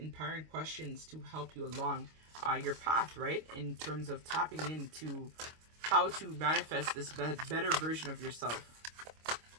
questions to help you along your path, right, in terms of tapping into how to manifest this better version of yourself.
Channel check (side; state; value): left; late; 25 ms